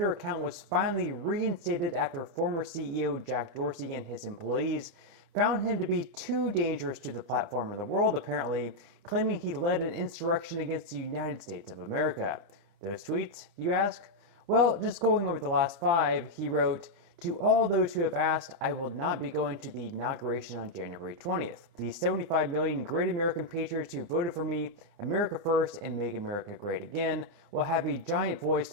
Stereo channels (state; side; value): late; left; 29 ms